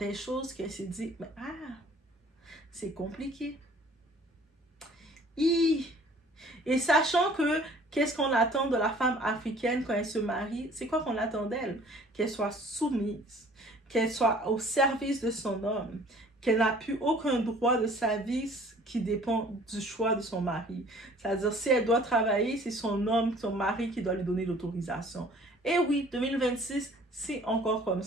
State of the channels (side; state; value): both; normal; correlation 0.52